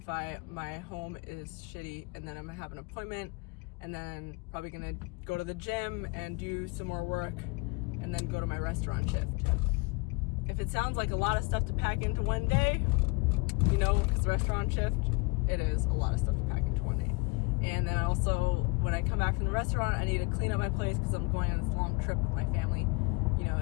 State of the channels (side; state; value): right; quieter; 28.2 dB